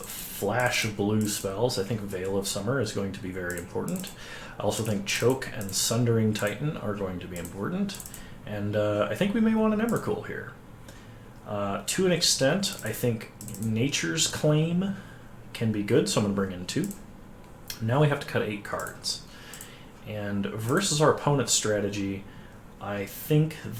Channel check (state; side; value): identical; both; correlation 1.00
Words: blue spells, I think Veil of Summer is going to be very important. I also think Choke and Sundering Titan are going to be important. And I think we may want an Emrakul here. To an extent, I think Nature's Claim can be good, so I'm going to bring in 2. Now we have to cut 8 cards. And versus our opponent's strategy, I think